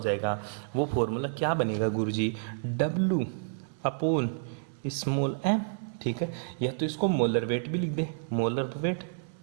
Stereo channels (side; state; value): left; silent; 58 dB below the other